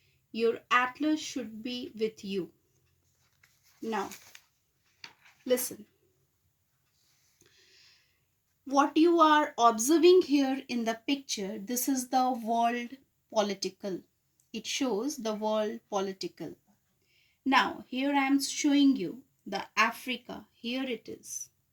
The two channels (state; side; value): identical; both; correlation 1.00